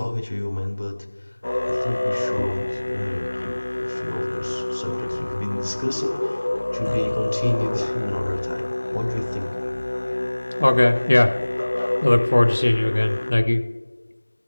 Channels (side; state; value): both; inverted; correlation -1.00